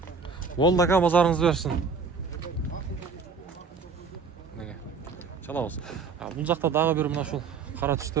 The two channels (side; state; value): left; quieter; 5.1 dB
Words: Болду ака, базарыңызды берсин. Мынакей. Чалабыз. Бул жакта дагы бир мына ушул кара